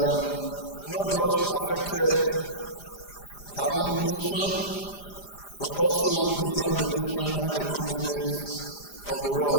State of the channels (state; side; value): late; right; 5.0 ms